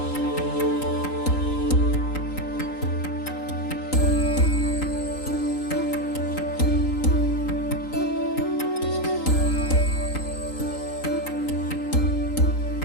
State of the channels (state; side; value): late; right; 3.9 ms